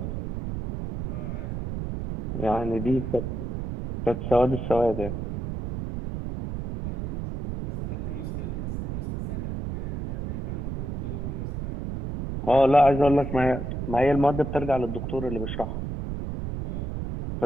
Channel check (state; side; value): noise; right; rumble, 5 dB below the sound